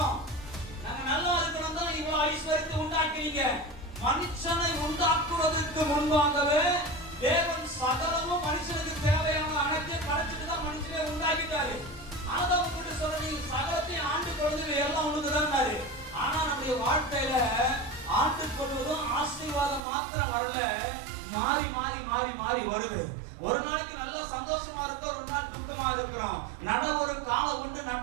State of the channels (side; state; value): left; drops out; at 19.8 s